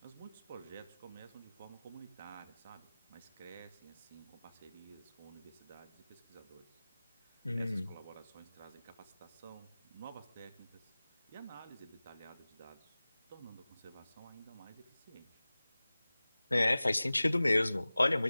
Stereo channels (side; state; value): both; inverted; correlation -0.98